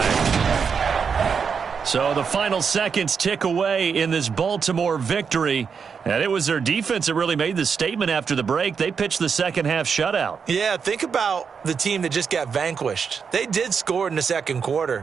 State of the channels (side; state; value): left; quieter; 6.2 dB